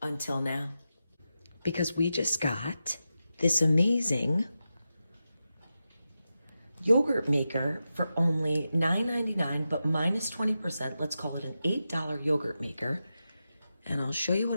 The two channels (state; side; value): inverted; both; correlation -0.91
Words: until now. Because we just got this amazing yogurt maker for only $9.99, but minus 20%. Let's call it an $8 yogurt maker. And I'll show you